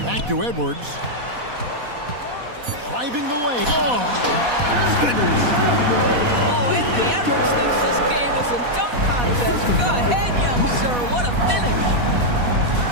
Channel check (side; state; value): left; late; 4.1 ms